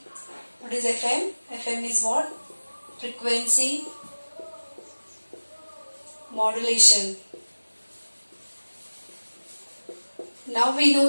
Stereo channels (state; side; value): inverted; both; correlation -1.00